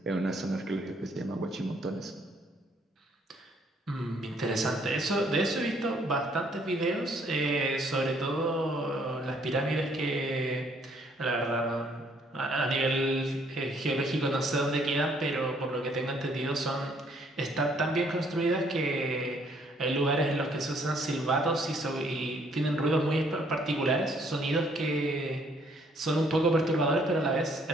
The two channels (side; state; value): both; normal; correlation 0.65